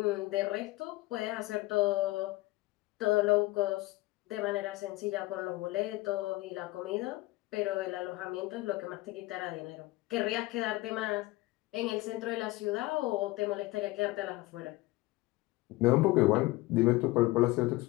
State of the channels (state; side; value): quieter; right; 19.9 dB